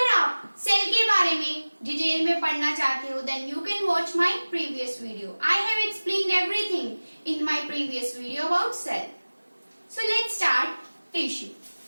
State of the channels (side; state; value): both; inverted; correlation -1.00